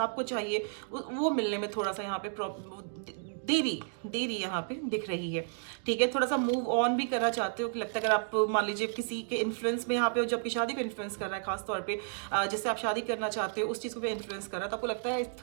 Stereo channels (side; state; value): left; silent; digital silence